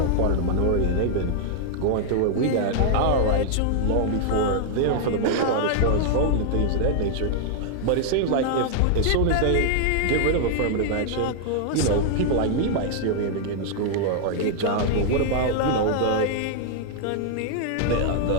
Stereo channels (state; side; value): different; both; correlation -0.01